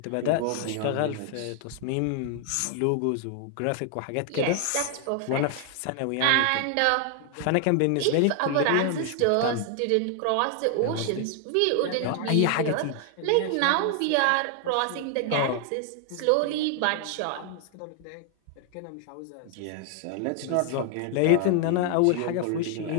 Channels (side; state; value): both; different; correlation 0.00